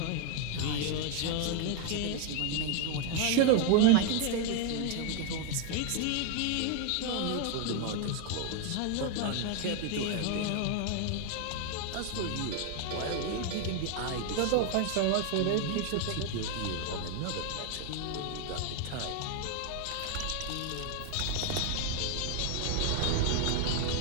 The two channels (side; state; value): both; different; correlation 0.00